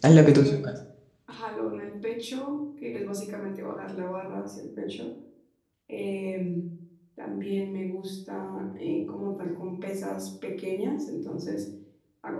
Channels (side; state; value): both; identical; correlation 1.00